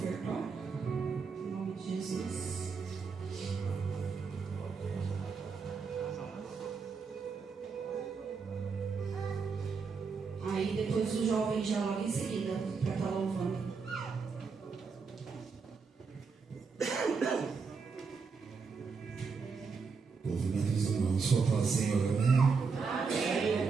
Em nome de Jesus. Aí depois o jovem já logo em seguida para estar louvando. Movimento dos irmãos, só fala, Senhor, amém?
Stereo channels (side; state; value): left; quieter; 5.1 dB